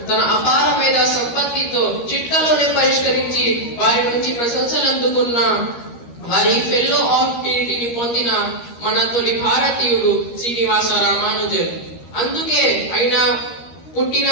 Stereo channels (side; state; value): right; late; 13 ms